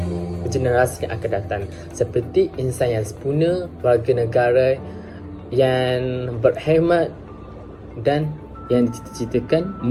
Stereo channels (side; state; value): both; identical; correlation 1.00